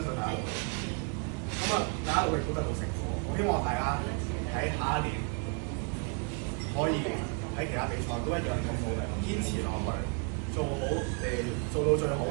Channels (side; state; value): left; quieter; 37.1 dB